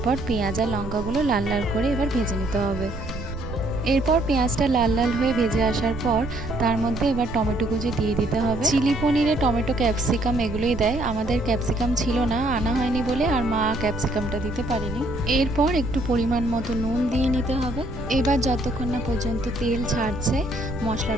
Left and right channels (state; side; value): noise; right; rumble, 9 dB below the sound